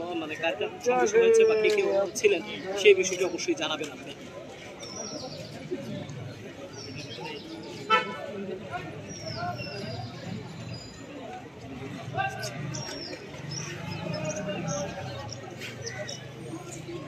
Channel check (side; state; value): both; identical; correlation 1.00